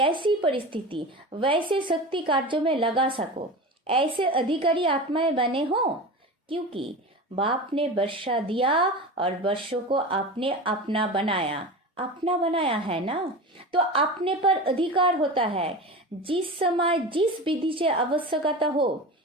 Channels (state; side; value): normal; both; correlation 0.29